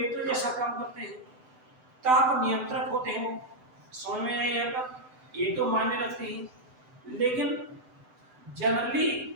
जैसा काम करते हैं, ताप नियंत्रक होते हैं वो। समझ में आया यहाँ पर? ये तो मायने रखते हैं, लेकिन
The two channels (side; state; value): left; late; 7.9 ms